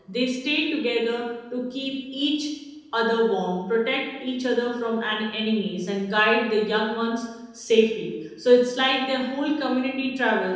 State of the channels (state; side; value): identical; both; correlation 1.00